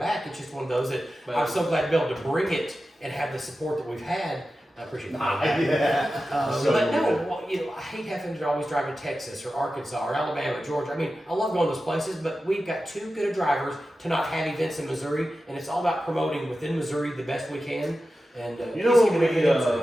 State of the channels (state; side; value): normal; both; correlation 0.93